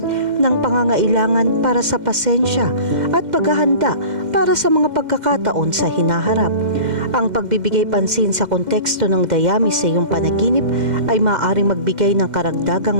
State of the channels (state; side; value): late; left; 2.1 ms